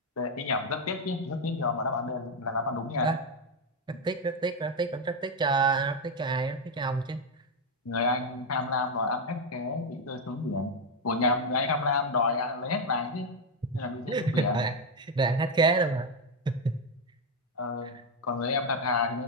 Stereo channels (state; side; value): normal; both; correlation 0.05